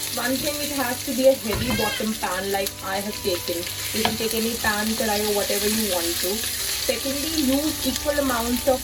One thing, it has to be a heavy bottom pan like I have taken. You can take any pan, karai or whatever you want to. Secondly, use equal amounts of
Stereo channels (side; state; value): both; identical; correlation 1.00